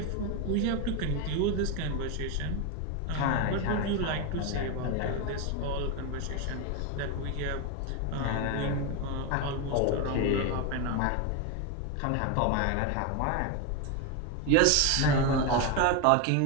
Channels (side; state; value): both; different; correlation 0.02